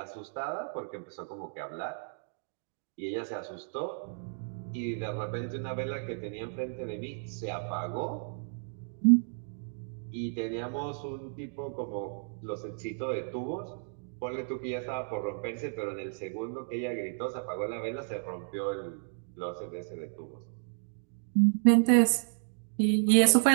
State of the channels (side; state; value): left; silent; digital silence